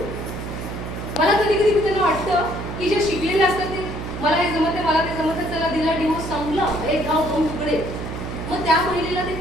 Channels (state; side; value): noise; right; hum, 7 dB below the sound